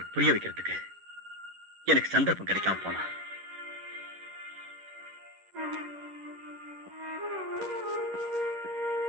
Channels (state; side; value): late; left; 11 ms